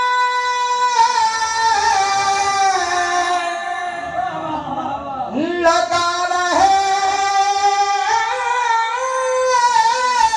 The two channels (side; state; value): both; identical; correlation 1.00